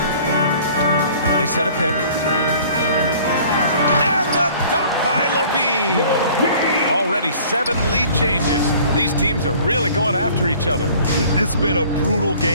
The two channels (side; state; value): both; inverted; correlation -0.51